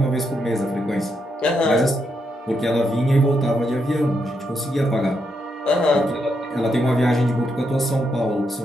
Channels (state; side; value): normal; both; correlation 0.80